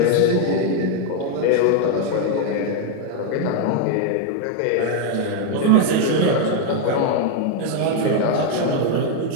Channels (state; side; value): different; both; correlation 0.01